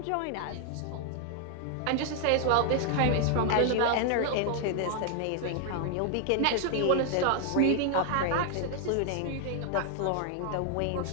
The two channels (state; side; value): different; both; correlation 0.00